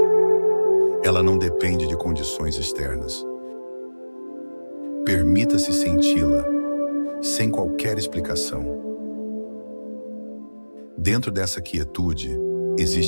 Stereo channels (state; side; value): inverted; both; correlation -1.00